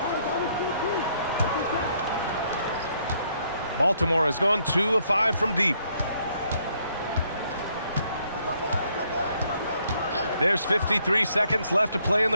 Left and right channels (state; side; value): inverted; both; correlation -0.70